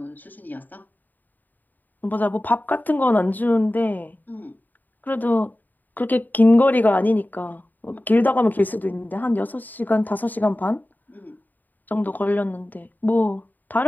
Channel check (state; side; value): late; right; 0.086 ms